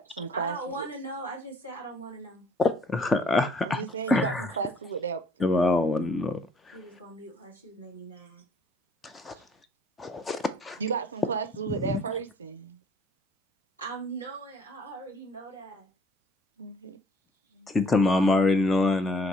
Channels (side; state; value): both; normal; correlation 0.60